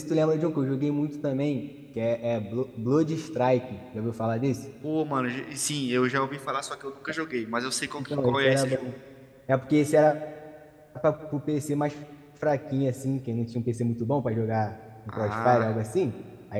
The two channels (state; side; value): identical; both; correlation 1.00